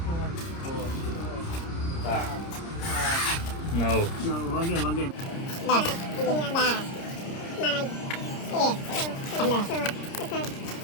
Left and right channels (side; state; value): right; late; 30 ms